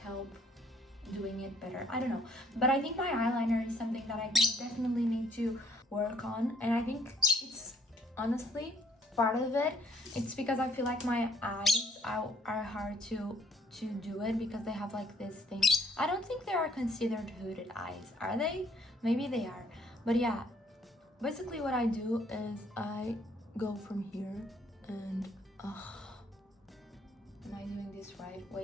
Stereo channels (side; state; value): both; normal; correlation 0.63